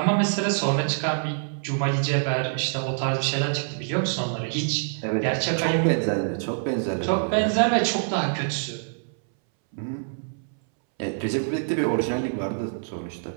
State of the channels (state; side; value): silent; left; 61 dB below the other